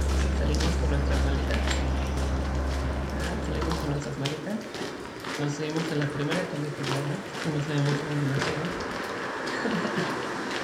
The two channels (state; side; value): identical; both; correlation 1.00